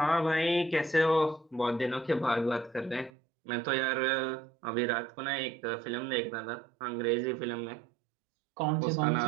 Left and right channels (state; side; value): drops out; left; at 3.1 s